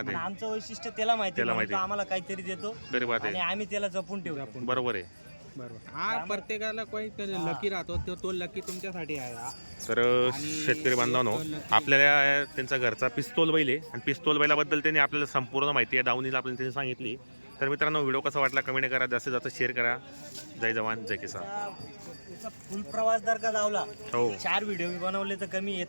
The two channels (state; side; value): inverted; both; correlation -1.00